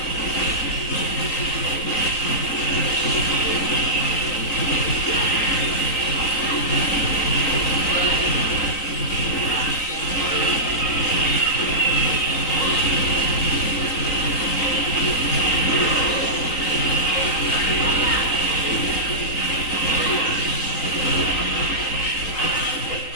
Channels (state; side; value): late; right; 3.9 ms